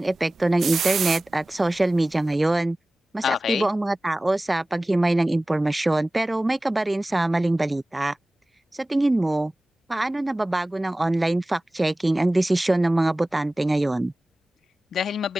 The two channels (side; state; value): both; normal; correlation 0.97